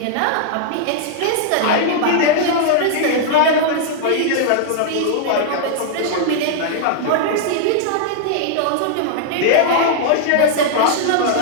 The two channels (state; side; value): different; both; correlation -0.01